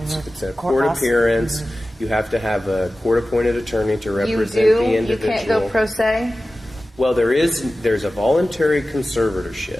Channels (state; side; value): normal; both; correlation 0.95